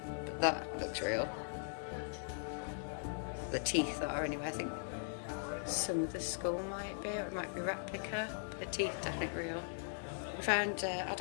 That looks real. The teeth are anyway. I think some of the skull might be, or it might be replica. But the teeth definitely real. We found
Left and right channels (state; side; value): silent; right; digital silence